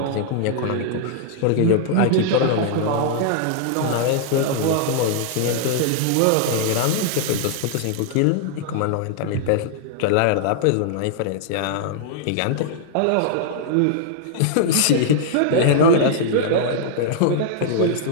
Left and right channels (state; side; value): different; both; correlation -0.01